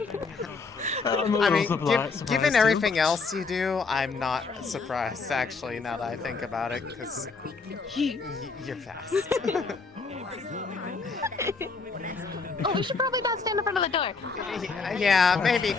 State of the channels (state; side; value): quieter; right; 4.5 dB